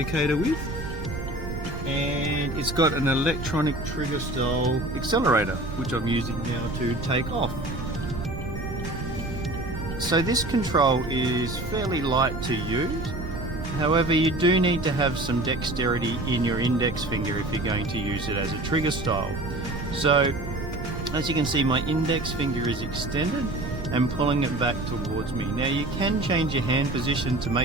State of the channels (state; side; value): noise; right; rumble, 7 dB below the sound